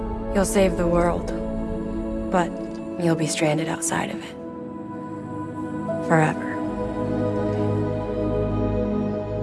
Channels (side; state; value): both; identical; correlation 1.00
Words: You'll save the world, but you'll be stranded outside of it. Forever.